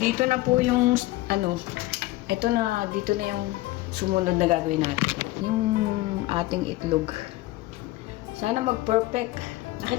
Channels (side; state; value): right; quieter; 18.2 dB